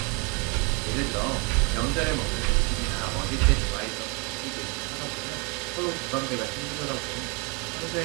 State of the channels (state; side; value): quieter; left; 31.4 dB